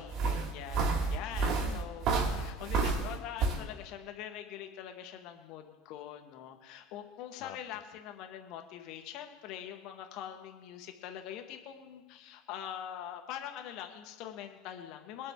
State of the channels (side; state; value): both; normal; correlation 0.44